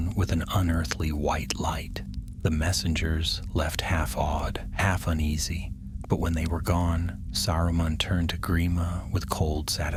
with an unearthly white light. The messengers left half awed, half uneasy, but when they were gone, Saruman turned to Grima with cold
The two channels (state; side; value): identical; both; correlation 1.00